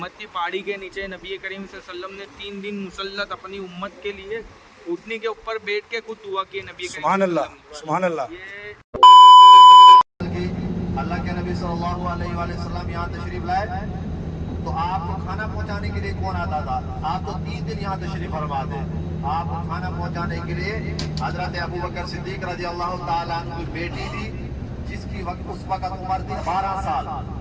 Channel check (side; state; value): both; identical; correlation 1.00